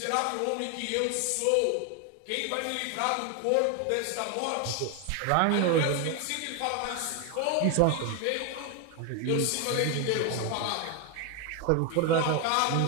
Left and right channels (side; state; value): both; different; correlation 0.01